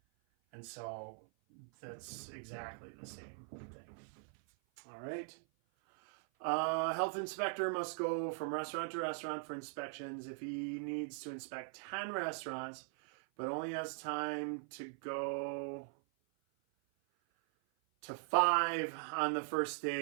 And so that's exactly the same thing. All right. Health inspector must go from restaurant to restaurant for inspections. If he needs to inspect 10 restaurants, but only has time to go to 5 on the first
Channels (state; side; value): silent; left; 51 dB below the other